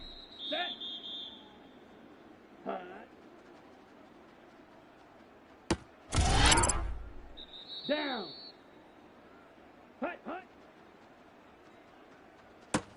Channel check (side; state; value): both; identical; correlation 1.00